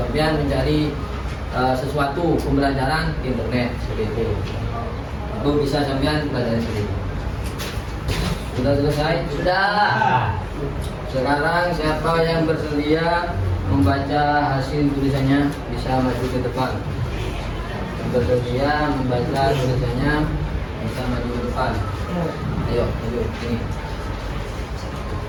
mencari sesuatu pembelajaran di internet seperti itu bisa sampean pelajari sendiri. Sudah selesai? Sudah. Sekarang siapa yang bersedia membaca hasil tulisannya bisa maju ke depan. Yang bersedia membaca tulisannya bisa maju ke depan. Ayo, maju sini.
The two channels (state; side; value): identical; both; correlation 1.00